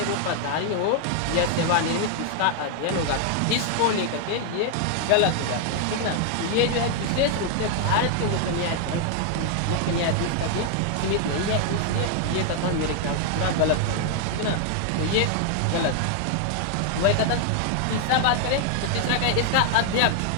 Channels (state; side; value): different; both; correlation 0.00